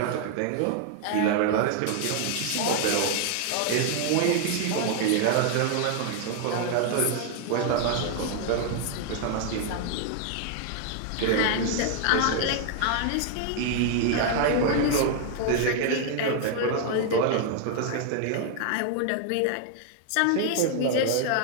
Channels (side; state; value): both; different; correlation 0.00